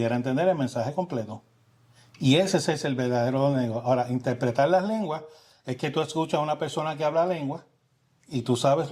entender el mensaje completo. Y ese es el verdadero don de lengua. Ahora, interpretar las lenguas es que tú escuchas a una persona que habla lengua y tú sabes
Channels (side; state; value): both; identical; correlation 1.00